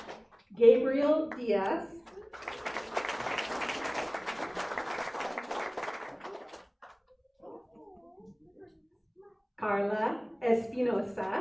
Gabriel Diaz. Carla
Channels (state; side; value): identical; both; correlation 1.00